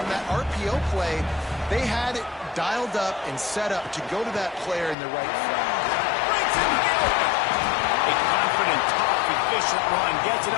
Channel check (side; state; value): right; drops out; at 5.0 s